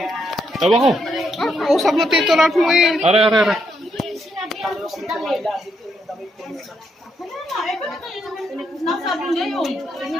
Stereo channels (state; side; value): normal; both; correlation 0.78